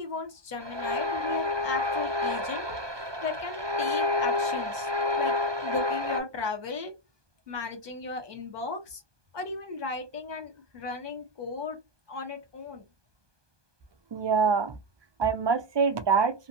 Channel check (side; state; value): left; late; 1.2 ms